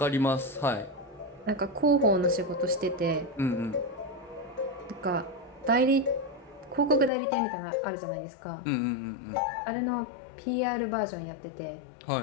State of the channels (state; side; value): drops out; right; at 7.1 s